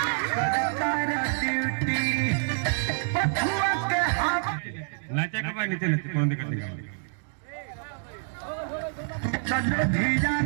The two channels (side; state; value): left; silent; digital silence